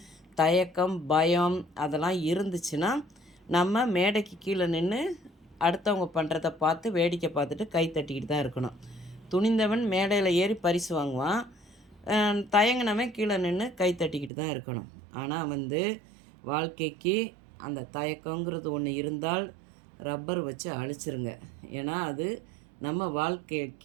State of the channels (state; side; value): drops out; left; at 14.3 s